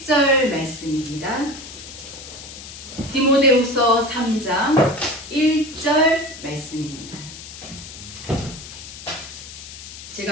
말씀입니다. 디모데후서 3장 1절 말씀입니다.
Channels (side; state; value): left; noise; hiss, 13 dB below the sound